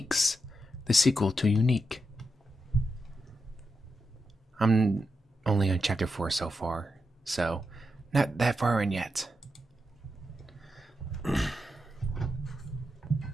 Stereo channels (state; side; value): normal; both; correlation 0.86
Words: the sequel to Unique. I'm only on chapter 4 so far, so not that far in yet.